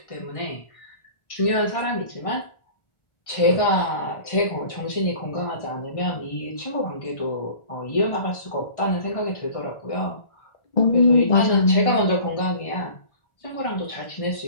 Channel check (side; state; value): right; late; 1.5 ms